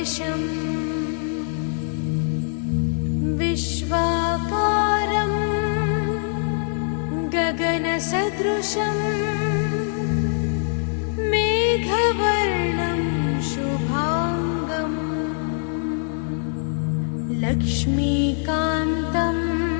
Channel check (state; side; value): silent; right; 63 dB below the other